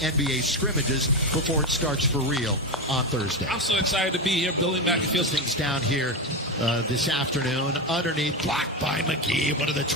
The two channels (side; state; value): both; normal; correlation 0.14